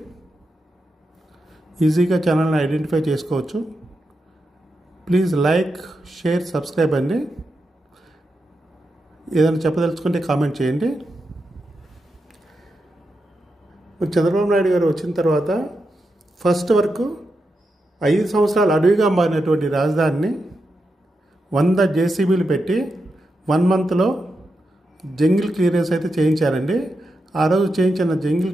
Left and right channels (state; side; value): normal; both; correlation 0.87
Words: ఈజీగా ఛానల్ని ఐడెంటిఫై చేసుకోవచ్చు. ప్లీజ్ లైక్, షేర్, సబ్స్క్రైబ్ అండి. ఏదైనా చెప్పదలుచుకుంటే కామెంట్ చేయండి. చంద్రబాబు నాయుడు గారు వచ్చిన తర్వాత ఫస్ట్ వరకు 5 సంవత్సరాలు అడవిగా మారినటువంటి రాజధానిని 100 జేసీబీలు పెట్టి 1 మంత్లో జంగిల్ క్లియరెన్స్ అయితే చేయించారండి. ఆ రోజు చేయించిన